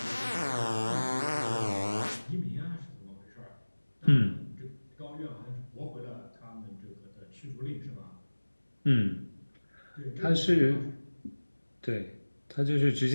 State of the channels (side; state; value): both; inverted; correlation -1.00